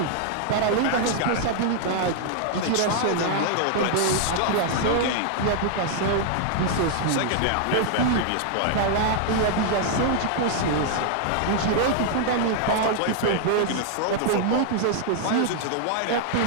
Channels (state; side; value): different; both; correlation 0.00